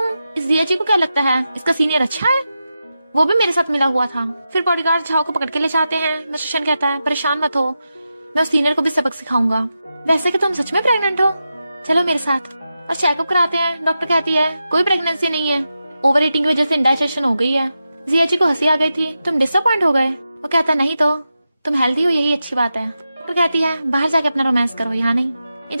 इस जिया जी को क्या लगता है इसका सीनियर अच्छा है, वो भी मेरे साथ मिला हुआ था। फिर बॉडीगार्ड झाओ को पकड़ के ले जाते हैं। मिस्टर शन कहता है परेशान मत हो, मैं उस सीनियर को भी सबक सिखाऊंगा। वैसे कि तुम सच में प्रेग्नेंट हो, चलो मेरे साथ। और चेकअप कराते हैं। डॉक्टर कहती है कोई प्रेगनेंसी नहीं है, ओवर ईटिंग की वजह से इंडाइजेशन हो गई है। जिया जी को हंसी आ गई थी, तुम डिसअपॉइंट हो गए। वो कहता नहीं तो तुम हेल्दी हो यही अच्छी बात है। डॉक्टर कहती है बाहर जाके अपना रोमांस करो, यहाँ नहीं।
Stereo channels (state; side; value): inverted; both; correlation -0.90